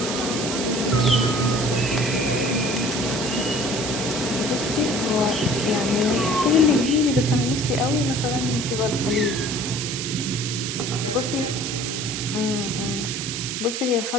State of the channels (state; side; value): noise; right; hiss, 4 dB below the sound